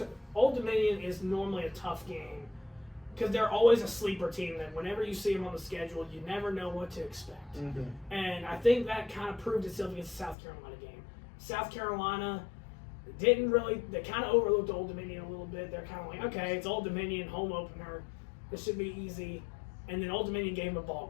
Old Dominion is normally a tough game because they're always a sleeper team that whenever you see them on the schedule, you never know what to expect. Mm-hmm. And I think that kind of proved itself against the South Carolina game. South Carolina they kind of overlooked Old Dominion a little bit. They're kind of like, okay, it's Old Dominion, home opener. This should be easy. And then Old Dominion gave them a ball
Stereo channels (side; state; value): right; drops out; at 10.4 s